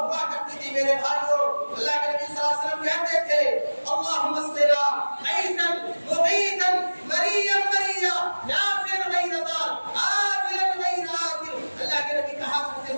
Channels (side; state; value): both; inverted; correlation -1.00